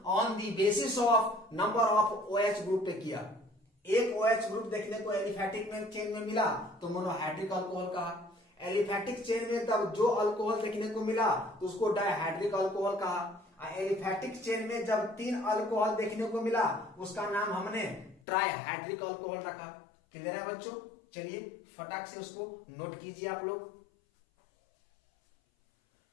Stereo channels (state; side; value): drops out; right; at 18.2 s